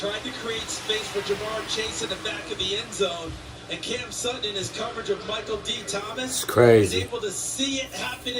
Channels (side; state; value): both; identical; correlation 1.00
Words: to create space for Jamar Chase in the back of the end zone. And Cam Sutton, in his coverage of Michael D. Thomas, is able to see it happen